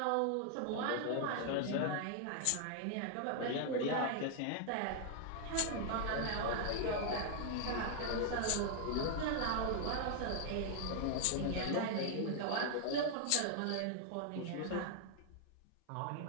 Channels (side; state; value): both; different; correlation 0.00